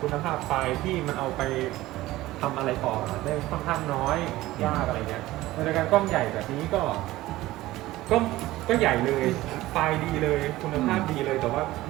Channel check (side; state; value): left; quieter; 17.0 dB